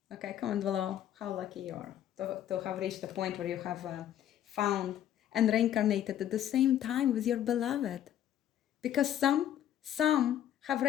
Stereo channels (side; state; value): right; quieter; 11.1 dB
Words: Okay, comment below how lucky you are to have reached the point where you have found and reincarnated at the same time with your beloved. Because some have